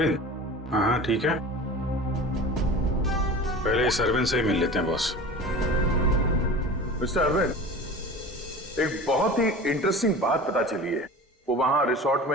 हाँ ठीक है, पहले इस अरविंद से ही मिल लेते हैं बॉस। मिस्टर अरविंद, एक बहुत ही इंटरेस्टिंग बात पता चली है। वो वहां रिसोर्ट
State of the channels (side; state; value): both; normal; correlation 0.36